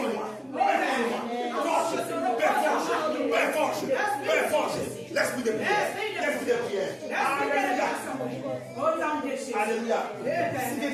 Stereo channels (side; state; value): both; identical; correlation 1.00